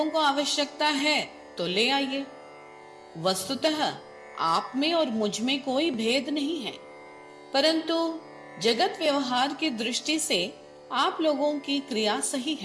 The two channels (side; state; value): both; identical; correlation 1.00